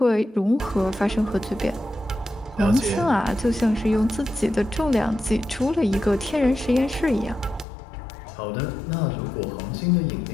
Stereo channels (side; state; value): right; drops out; at 7.7 s